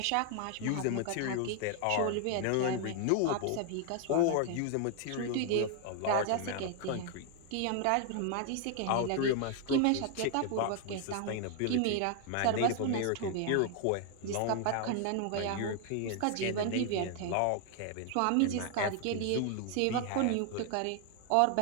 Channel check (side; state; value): both; different; correlation 0.00